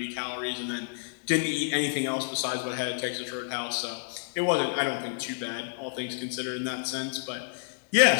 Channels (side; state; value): right; silent; digital silence